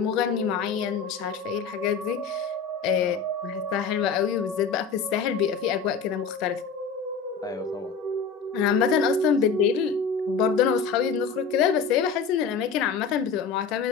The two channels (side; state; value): right; quieter; 5.6 dB